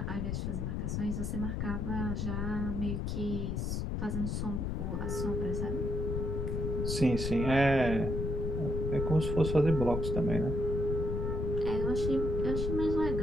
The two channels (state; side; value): noise; left; rumble, 1 dB below the sound